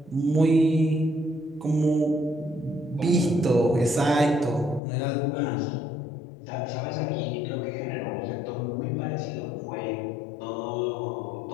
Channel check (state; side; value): drops out; right; at 4.8 s